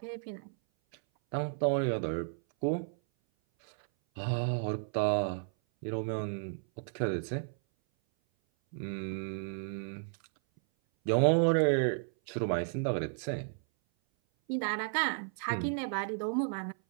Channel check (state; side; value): silent; left; 56 dB below the other